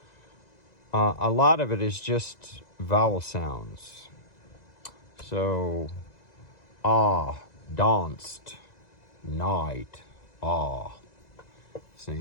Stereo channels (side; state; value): right; late; 2.0 ms